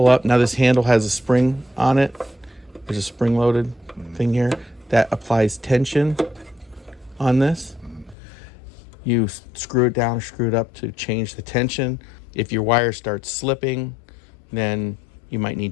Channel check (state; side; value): drops out; right; at 8.2 s